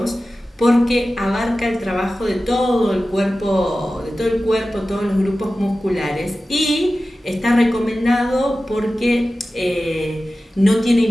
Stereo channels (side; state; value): both; normal; correlation 0.95